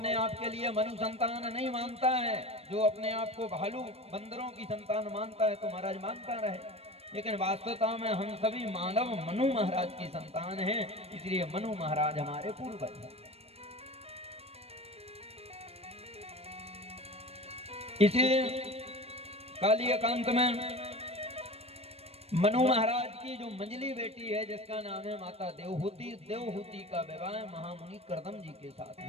आप के लिए मनु संतान नहीं मानता है, जो अपने आप को भालू बंदरों की संतान मानता है, तो महाराज मानता रहे, लेकिन वास्तवता में हम सभी मानव मनु महाराज की संतान हैं, इसलिए मनु महाराज हमारे पूर्वज हैं। इसी काली एकांत में मनु महाराज की जो मंजली बेटी है जिसका नाम है माता देवहूति, देवहूति का विवाह महामुनि करदम जी के साथ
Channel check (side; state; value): left; late; 0.29 ms